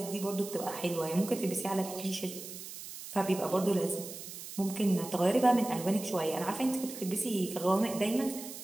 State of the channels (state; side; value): noise; right; hiss, 11 dB below the sound